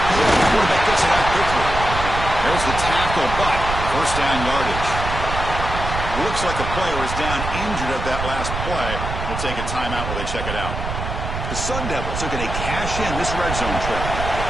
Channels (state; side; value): noise; right; rumble, 5 dB below the sound